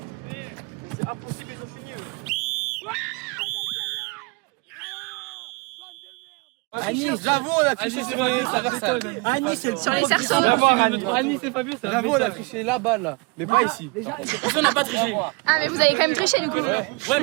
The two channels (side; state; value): left; quieter; 28.6 dB